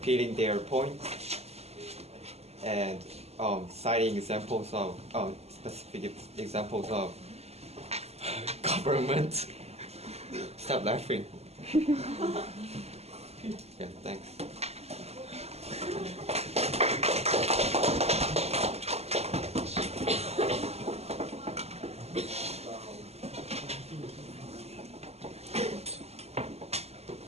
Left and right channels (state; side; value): late; left; 0.30 ms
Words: their points and citing examples of specific examples of government. Stop laughing. Yeah, thanks.